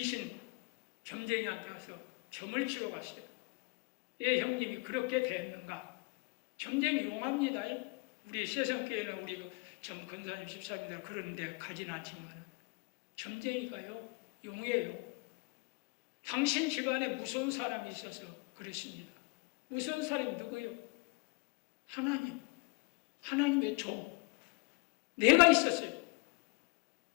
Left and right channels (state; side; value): quieter; right; 28.8 dB